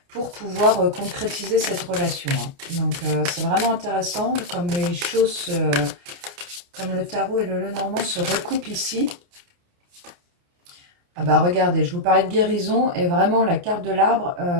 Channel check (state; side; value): late; left; 29 ms